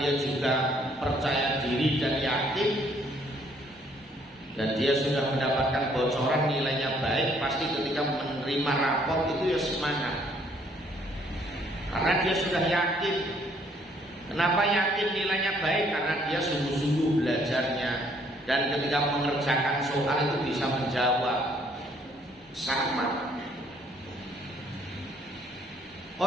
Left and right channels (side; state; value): both; normal; correlation 0.65